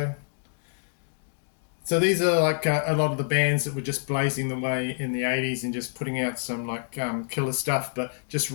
So these are like a lot of the bands that were just blazing the way in the 80s and just putting out some like killer stuff, but just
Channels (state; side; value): silent; right; digital silence